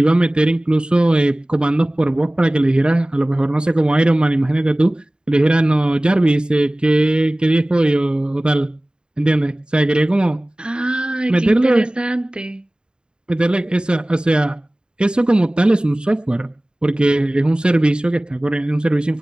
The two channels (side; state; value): left; late; 0.049 ms